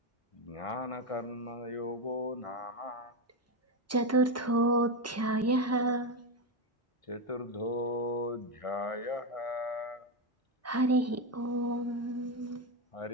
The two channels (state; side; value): normal; both; correlation 0.09